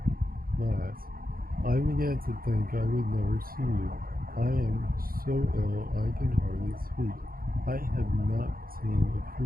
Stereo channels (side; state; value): left; late; 0.42 ms